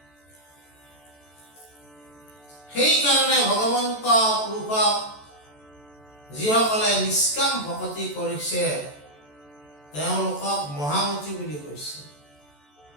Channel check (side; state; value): right; late; 14 ms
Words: সেইকাৰণে ভগৱন্ত পুৰুষক যিসকলে নিষ্কাম ভক্তি কৰিছে তেওঁলোকক মহামতি বুলি কৈছে।